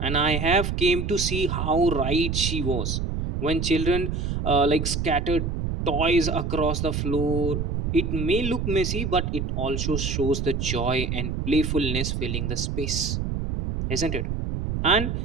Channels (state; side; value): noise; right; rumble, 2 dB below the sound